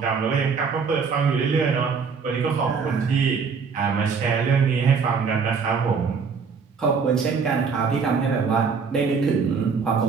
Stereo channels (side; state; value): left; quieter; 5.6 dB